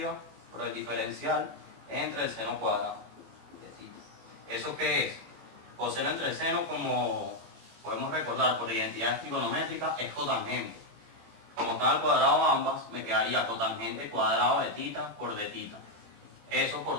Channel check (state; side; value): late; left; 18 ms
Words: por el diferencial entre el seno cuadrado de tita. ¿Eso qué es? Coseno entre seno, como podemos recordar por identidades trigonométricas, es cotangente. Como están al cuadrado ambas, me quedaría cotangente cuadrado de tita por de tita. eso